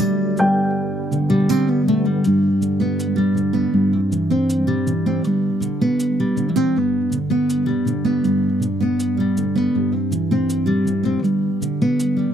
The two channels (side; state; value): both; normal; correlation 0.75